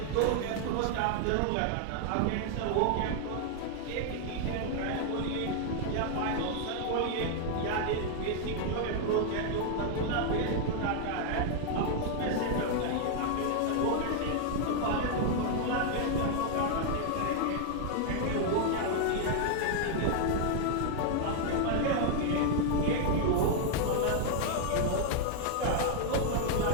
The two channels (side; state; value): both; different; correlation 0.00